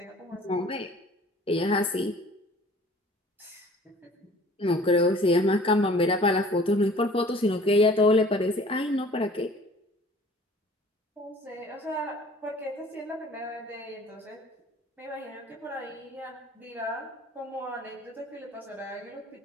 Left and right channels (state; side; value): normal; both; correlation 0.50